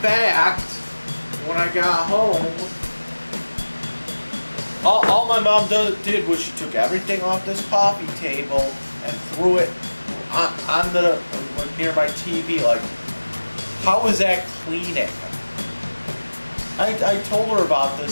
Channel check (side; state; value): both; inverted; correlation -1.00